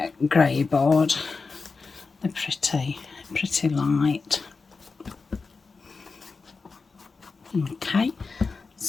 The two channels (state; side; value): quieter; right; 4.4 dB